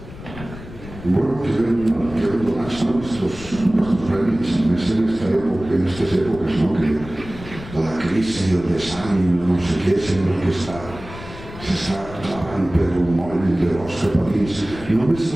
Bueno, queden donats estos premis, més en estas épocas, ¿no? Que la crisi, el desànim, no sé què, sembla que s'està clavant per un moll de l'os cap a dins. Només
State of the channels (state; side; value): noise; left; rumble, 14 dB below the sound